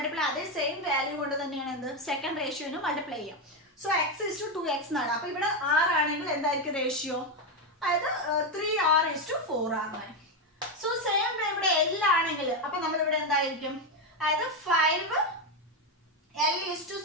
അതേ സെയിം വാല്യൂ കൊണ്ട് തന്നെയാണ് എന്ത് സെക്കൻഡ് റേഷ്യോന് മൾട്ടിപ്ലൈ ചെയ്യാം. സോ x:2x എന്നാണ്. അപ്പൊ ഇവിടെ r ആണെങ്കിൽ എന്തായിരിക്കും റേഷ്യോ, അതായത് 3r:4r ആണ്. സോ സെയിം ഇവിടെ L ആണെങ്കിൽ അപ്പൊ നമ്മൾ ഇവിടെ എന്തായിരിക്കും, അതായത്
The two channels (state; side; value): normal; both; correlation 0.08